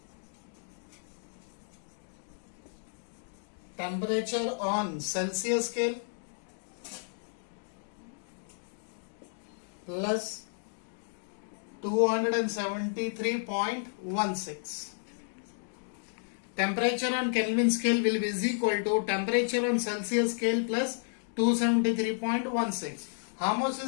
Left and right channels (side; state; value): right; silent; digital silence